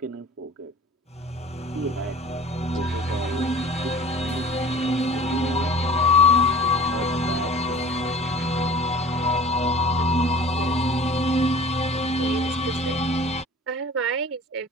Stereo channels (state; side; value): normal; both; correlation 0.43